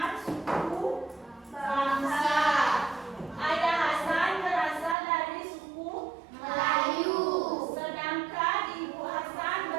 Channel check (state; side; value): drops out; left; at 5.0 s